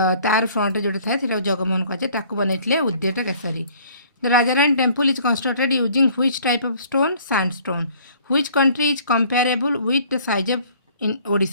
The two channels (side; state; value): both; inverted; correlation -0.55